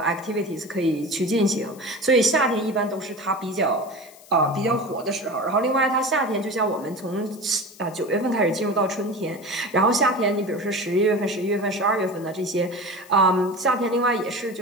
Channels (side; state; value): left; noise; hiss, 23 dB below the sound